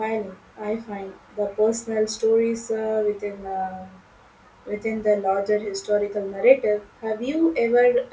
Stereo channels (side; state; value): both; identical; correlation 1.00